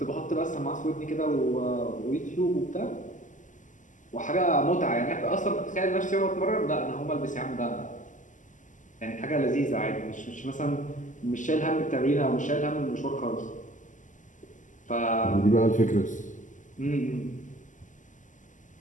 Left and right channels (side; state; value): right; late; 0.37 ms